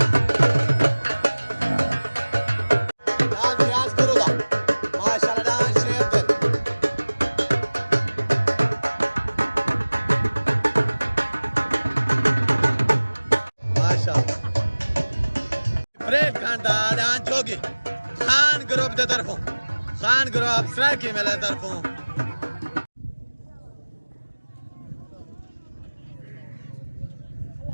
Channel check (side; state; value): both; inverted; correlation -1.00